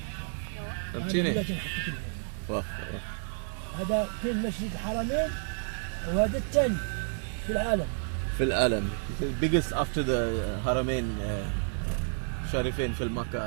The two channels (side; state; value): left; silent; 58 dB below the other